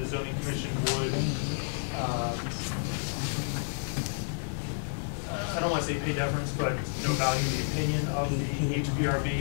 zoning commission would, I don't want to say pay deference, but, value the opinion of the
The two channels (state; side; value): silent; right; 58 dB below the other